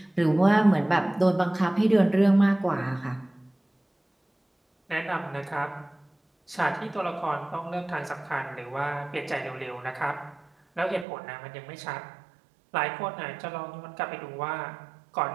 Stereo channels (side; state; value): left; drops out; at 11.1 s